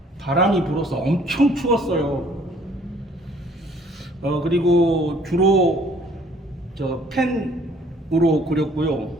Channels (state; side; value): normal; both; correlation 0.58